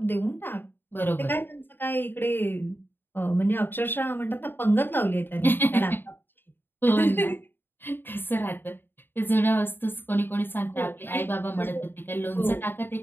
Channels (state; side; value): late; right; 0.098 ms